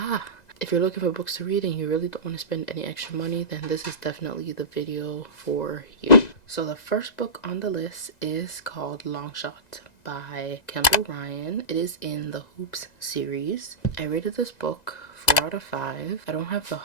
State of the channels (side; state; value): right; late; 2.0 ms